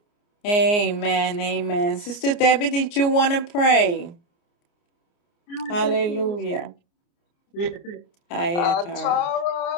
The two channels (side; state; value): right; late; 29 ms